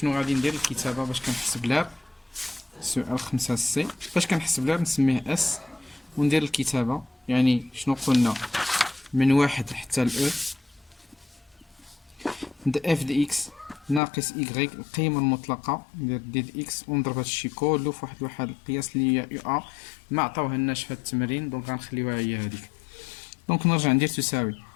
غادي ندير؟ الكتابة باش كنحسب لها سؤال 5 سي باش كنحسب لها نسميه اس وندير الكتابة. يعني شنو قلنا؟ من واحد حتى الاو د اف دي اكس ناقص ايكغيك القيمة المطلقة ندير دي د اكس ونضرب هادشي كلو في واحد القياس اللي هي يو ا ما عطاوهالناش في هاد التمرين دونك غنخليوها هي هاديك. دونك نرجع ندير تساوي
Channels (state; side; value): drops out; right; at 14.0 s